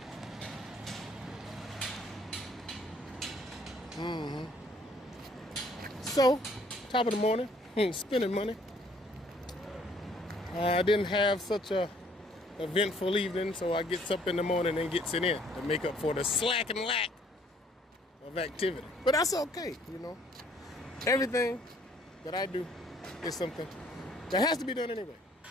So, top of the morning, spending money. I didn't have such a eventful evening, so I gets up in the morning and gets it in to make up for the slack and lack of activity. But that's okay, you know. Everything that I do is something that has to be done anyway.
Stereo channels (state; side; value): normal; both; correlation 0.61